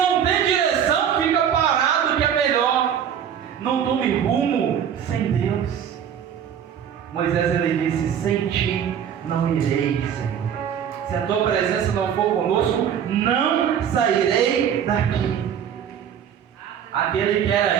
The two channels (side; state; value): left; quieter; 8.7 dB